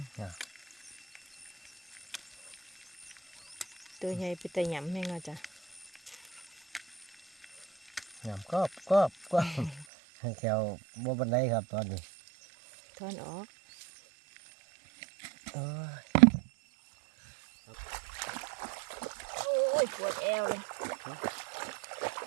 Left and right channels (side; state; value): left; drops out; at 9.9 s